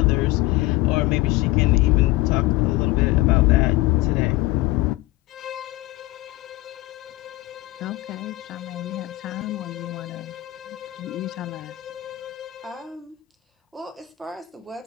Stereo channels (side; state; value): right; quieter; 18.3 dB